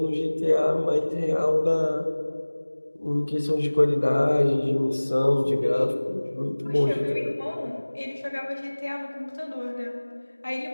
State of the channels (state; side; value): inverted; both; correlation -1.00